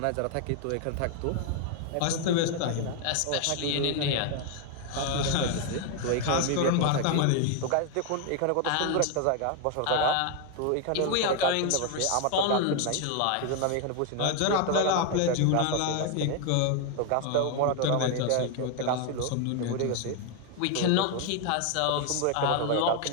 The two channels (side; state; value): both; different; correlation 0.01